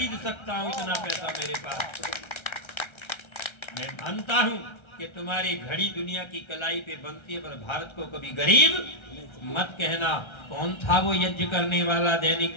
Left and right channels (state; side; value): late; right; 1.3 ms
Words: सकता हूं, इतना पैसा मेरे पास। मैं मानता हूं कि तुम्हारी घड़ी दुनिया की कलाई पे बनती है, पर भारत को कभी गरीब मत कहना। कौन था वो यज्ञ करने वाला दैनिक